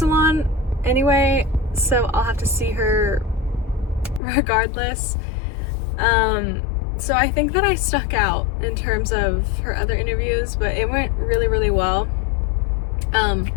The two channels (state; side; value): drops out; right; at 4.2 s